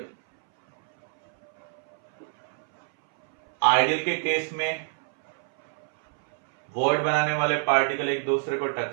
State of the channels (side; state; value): left; silent; 60 dB below the other